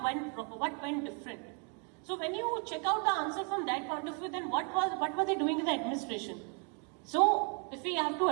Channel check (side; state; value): left; quieter; 38.0 dB